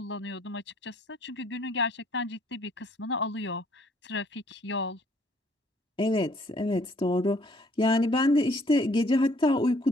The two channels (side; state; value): both; normal; correlation 0.62